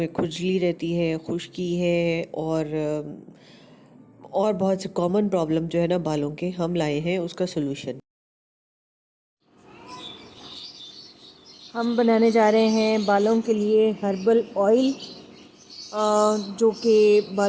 खुजली रहती है, खुश्की है और बहुत से कॉमन प्रॉब्लम जो है ना बालों के, हम लाए हैं उसका सोल्यूशन। हम बनाने जा रहे हैं बालों के लिए हर्बल ऑयल, जो कि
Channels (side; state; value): both; identical; correlation 1.00